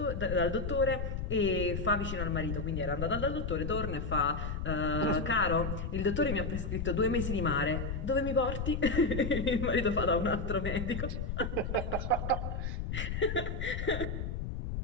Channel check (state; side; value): noise; left; rumble, 3 dB below the sound